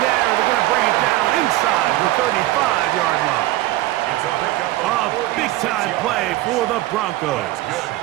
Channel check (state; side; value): quieter; left; 16.7 dB